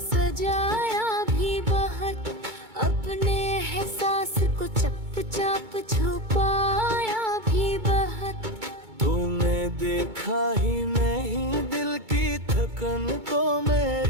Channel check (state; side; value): late; left; 2.2 ms